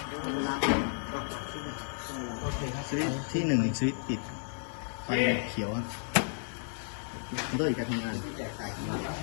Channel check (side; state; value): right; silent; digital silence